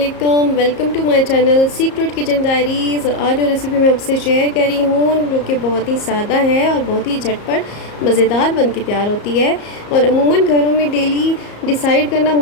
Welcome to my channel Secret Kitchen Diaries. और आज जो रेसिपी मैं आपसे शेयर कर रही हूँ जो कि बहुत ही सादा है और बहुत ही झटपट मज़ेदार बन के तैयार होती है। और अमूमन घरों में डेली डिसाइड करना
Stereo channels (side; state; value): right; late; 34 ms